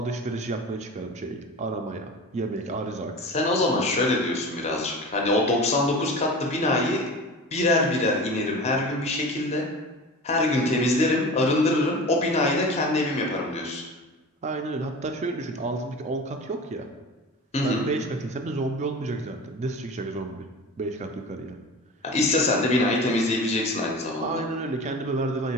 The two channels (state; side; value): normal; both; correlation 0.34